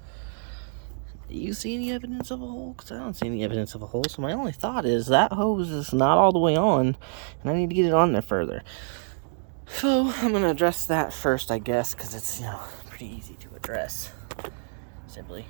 Do you see any evidence of a hole? Because I don't see any evidence of a hole. So my only thought is that hose is not all the way on, and I need to get it on there further. So I'm going to address that first, I guess, because it's, pretty easy to address. Simply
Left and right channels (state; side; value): silent; left; digital silence